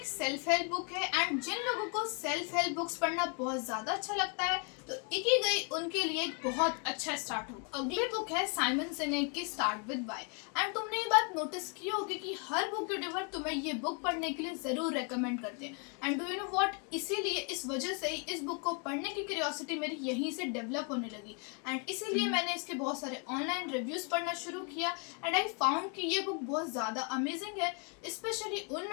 सेल्फ हेल्प बुक है एंड जिन लोगों को सेल्फ हेल्प बुक्स पढ़ना बहुत ज्यादा अच्छा लगता है तो इकिगाई उनके लिए एक बहुत अच्छा स्टार्ट होगा। अगली बुक है साइमन सिनेक की स्टार्ट विद व्हाई एंड तुमने ये बात नोटिस की होगी कि हर बुक यूट्यूबर तुम्हें ये बुक पढ़ने के लिए जरूर रेकमेंड करते हैं and do you know what, इसीलिए इस वजह से ही इस बुक को पढ़ने की क्यूरियोसिटी मेरी यहीं से डेवलप होने लगी एंड इसीलिए मैंने इसके बहुत सारे ऑनलाइन रिव्यूज पढ़ना शुरू किया एंड आई फाउंड कि ये बुक बहुत ज़्यादा अमेजिंग है, स्पेशली उन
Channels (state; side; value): quieter; right; 36.4 dB